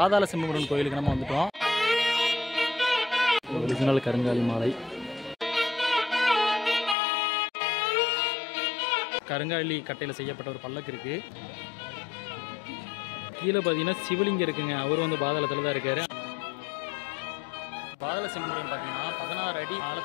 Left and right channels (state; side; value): drops out; right; at 7.0 s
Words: செம்புமுருகன் கோயிலுக்கு நம்ம வந்துட்டோம். ஒரிஜினல் கருங்காலி மாலை. கருங்காலி கட்டையில் செய்யப்பட்ட ஒரு பல்லக்கு இருக்குது. கீழே பார்த்தீங்கன்னா சிவலிங்கம் இருக்குங்க. அவர் வந்து பாதாளத்தில் தான் இருக்காரு. பாதாள செம்புமுருகன் பார்த்தீங்கன்னா 16 அடி